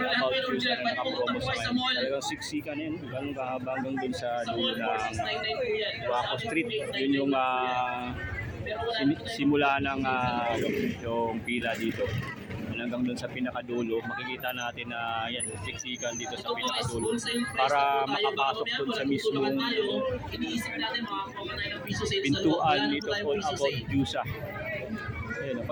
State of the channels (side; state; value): both; identical; correlation 1.00